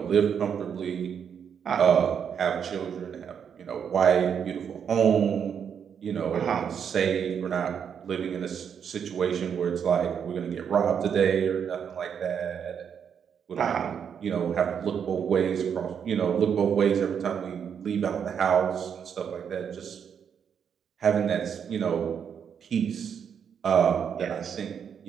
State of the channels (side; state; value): left; quieter; 7.6 dB